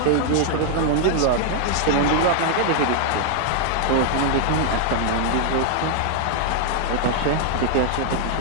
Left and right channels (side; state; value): both; different; correlation 0.00